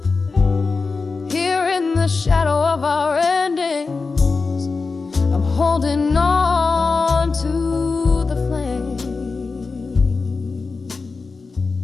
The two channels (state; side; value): quieter; right; 4.3 dB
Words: Here in the shadow of our endings, I'm holding on to the flame.